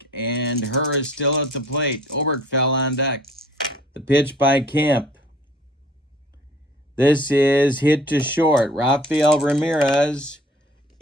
and Herr is still at the plate. Oberkfell on deck. The pitch by Camp. This is hit to short. Rafael Ramirez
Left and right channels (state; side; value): normal; both; correlation 0.52